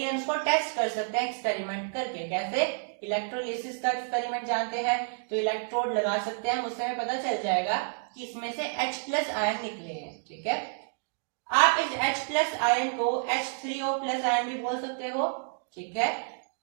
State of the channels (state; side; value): silent; left; digital silence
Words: हम इसको टेस्ट कर सकते हैं एक्सपेरिमेंट करके। कैसे? इलेक्ट्रोलिसिस का एक्सपेरिमेंट जानते हैं, तो इलेक्ट्रोड लगा सकते हैं, उससे हमें पता चल जाएगा कि इसमें से H+ आयन निकले हैं। ठीक है, आप इस H+ आयन को H3O+ आयन भी बोल सकते हो। ठीक है,